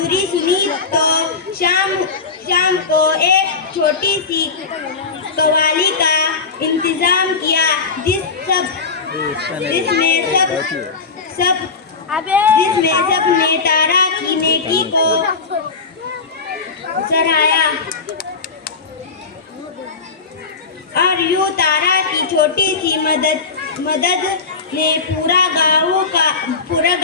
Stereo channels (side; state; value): right; quieter; 4.7 dB